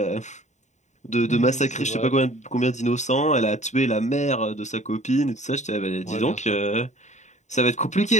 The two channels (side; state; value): right; late; 0.34 ms